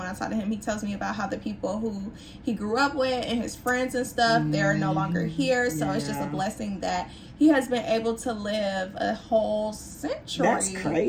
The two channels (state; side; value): identical; both; correlation 1.00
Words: I talk to him, he tells me about how the people who he grew up with and his friends and stuff, they're no longer here. So it's just a blessing that he has been able to live a whole century. That's